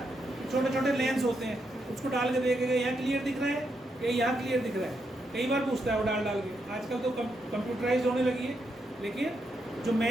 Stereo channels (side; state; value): both; normal; correlation 0.81